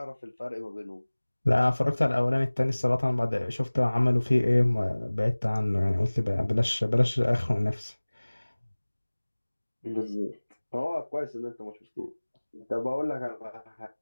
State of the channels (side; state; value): both; inverted; correlation -1.00